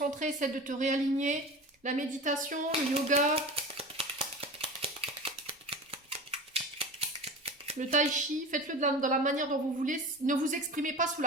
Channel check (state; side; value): normal; both; correlation 0.32